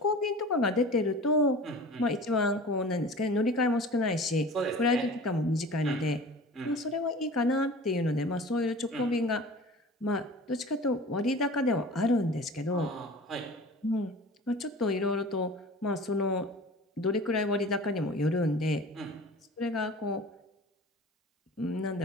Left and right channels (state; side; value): normal; both; correlation 0.40